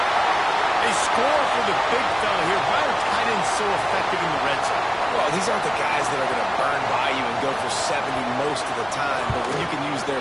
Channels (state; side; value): identical; both; correlation 1.00